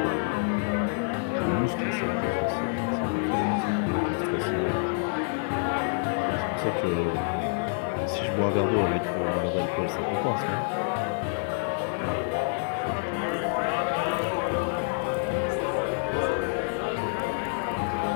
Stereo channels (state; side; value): silent; right; digital silence